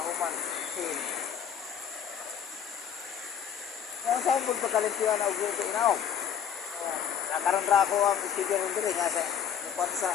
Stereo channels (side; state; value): right; quieter; 8.3 dB